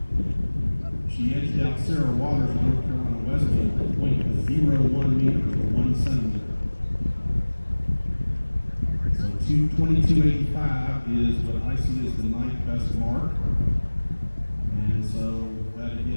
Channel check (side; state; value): both; inverted; correlation -1.00